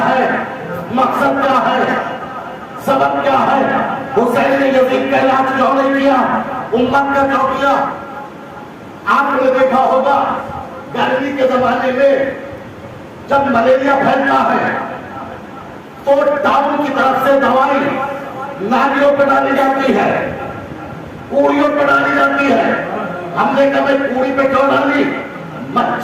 है? मकसद क्या है? सबब क्या है? हुसैन ने यजीद का इलाज क्यों नहीं किया? उम्मत का क्यों किया? आपने देखा होगा गर्मी के जमाने में जब मलेरिया फैलता है तो टाउन की तरफ से दवाई नालियों पर डाली जाती है, कूड़ियों पर डाली जाती है। हमने कभी कूड़ी पे क्यों डाली?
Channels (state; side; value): identical; both; correlation 1.00